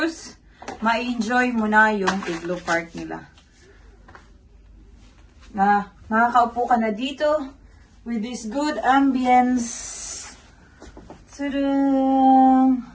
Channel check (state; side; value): identical; both; correlation 1.00